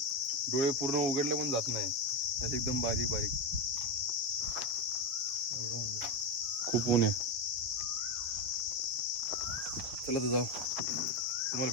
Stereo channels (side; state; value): left; late; 7.3 ms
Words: डोळे पूर्ण उघडले पण जात नाही, असं एकदम बारीक बारीक. खूप ऊन आहे. चला तर जाऊ, तुम्हाला